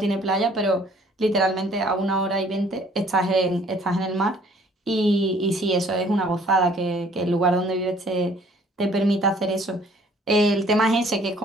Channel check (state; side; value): normal; both; correlation 0.58